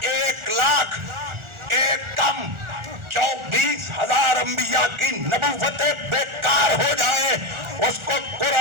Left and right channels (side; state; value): left; late; 1.4 ms